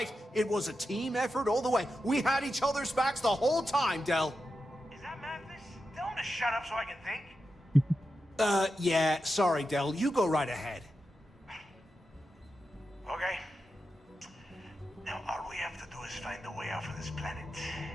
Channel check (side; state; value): both; normal; correlation 0.89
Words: It was a team effort all the way. We had each other's backs the whole time, Del. Is that Mathis? Tell him to shut up so I can think. Yeah, sorry, Del. You go right ahead. Okay.